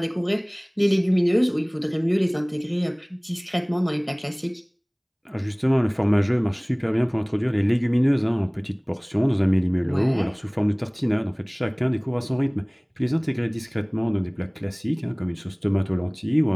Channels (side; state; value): both; identical; correlation 1.00